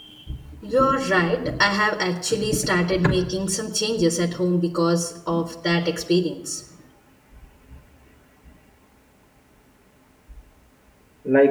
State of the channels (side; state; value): both; identical; correlation 1.00